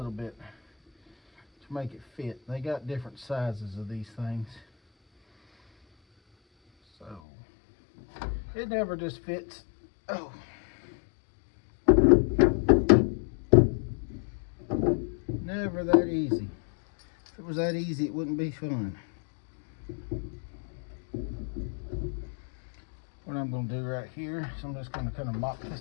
bit to make it fit. They got different sizes of these things, so it never just fits. Oh, never that easy. If it was that easy, it wouldn't be fun. What I'm going to do right here is I'm just going to kind of mop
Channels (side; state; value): right; drops out; at 7.2 s